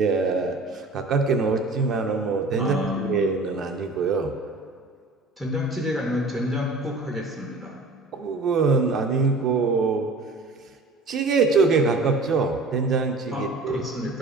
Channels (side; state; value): left; quieter; 3.3 dB